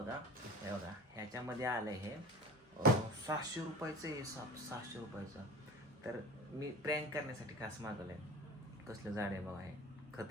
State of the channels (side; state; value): both; normal; correlation 0.38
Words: हे बघा ह्याच्यामध्ये आलं हे 700 रुपयाचं आहे. 700 रुपयाचं. तर मी प्रँक करण्यासाठी खास मागवलं आहे. कसलं झाड आहे बघा हे.